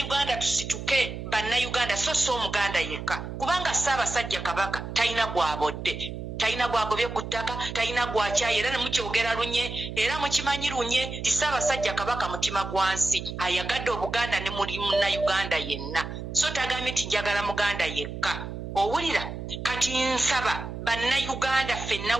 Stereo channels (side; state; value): right; noise; hum, 8 dB below the sound